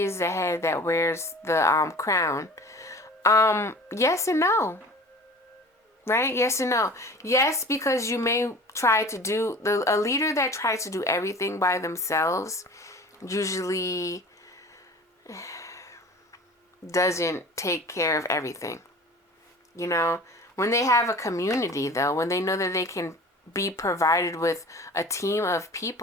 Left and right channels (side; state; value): both; normal; correlation 0.41